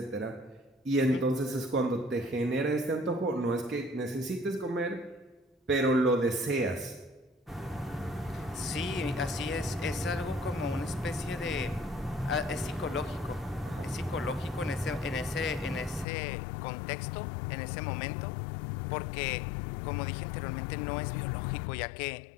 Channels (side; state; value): right; drops out; at 16.1 s